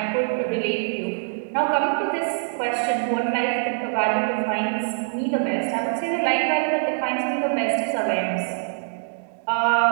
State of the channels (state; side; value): silent; left; digital silence